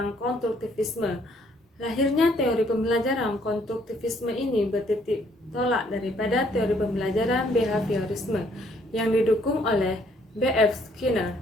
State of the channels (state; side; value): normal; both; correlation 0.66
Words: konstruktivisme. Lahirnya teori pembelajaran konstruktivisme ini bertitik tolak daripada teori pembelajaran behaviorisme yang didukung oleh B.F. Skinner